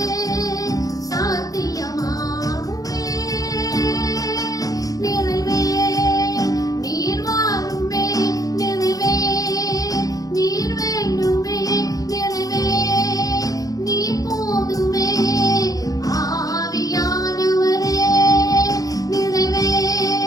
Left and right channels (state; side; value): late; right; 0.17 ms